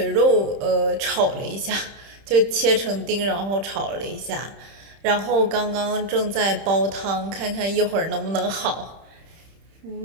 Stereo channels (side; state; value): left; late; 30 ms